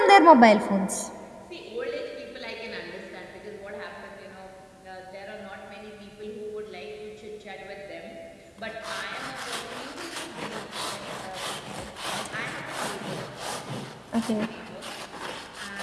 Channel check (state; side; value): identical; both; correlation 1.00